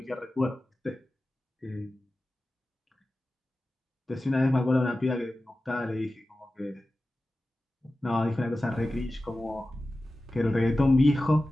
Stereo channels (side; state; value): both; normal; correlation 0.95